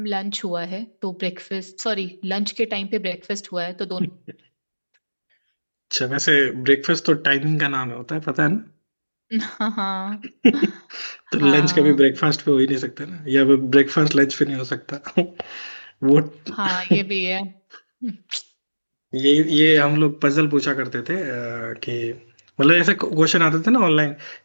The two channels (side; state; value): both; inverted; correlation -1.00